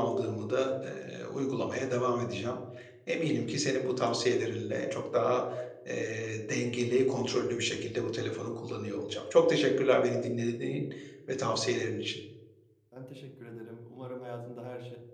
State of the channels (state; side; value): identical; both; correlation 1.00